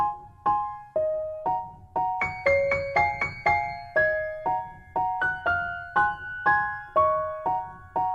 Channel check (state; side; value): identical; both; correlation 1.00